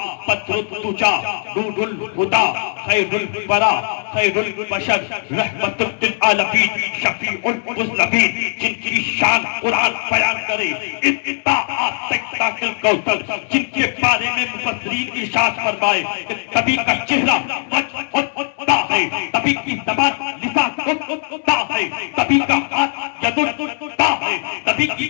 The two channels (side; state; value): right; silent; 64 dB below the other